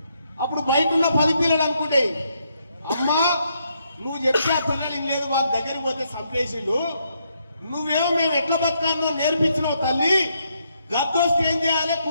అప్పుడు బయట ఉన్న 10 పిల్లలు అనుకుంటే, అమ్మా నువ్వు చెప్తే ఆ పిల్లలు లేదు, వాళ్ళ దగ్గరికి పోతే సంప్లేషులు, నువ్వేమో మేము ఎట్లా బతకాలో నేర్పించినావు తల్లి, గద్దొస్తే ఏం చేయాలి,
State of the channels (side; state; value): both; inverted; correlation -0.76